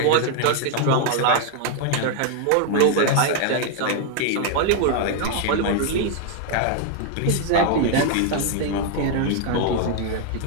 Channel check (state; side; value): different; both; correlation 0.00